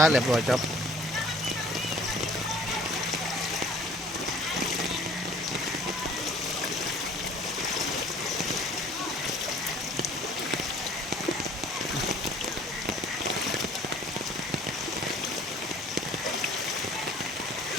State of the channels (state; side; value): normal; both; correlation 0.52